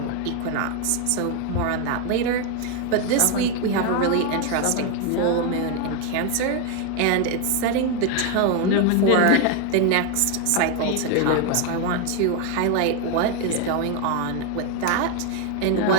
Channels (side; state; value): both; different; correlation 0.01